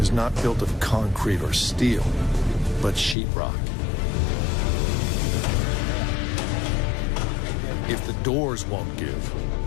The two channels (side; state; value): right; drops out; at 3.2 s